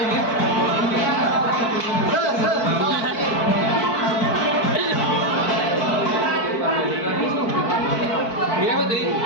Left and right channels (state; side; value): late; right; 4.6 ms